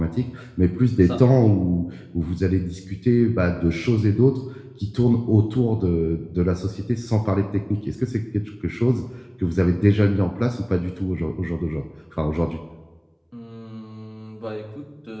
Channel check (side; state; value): both; identical; correlation 1.00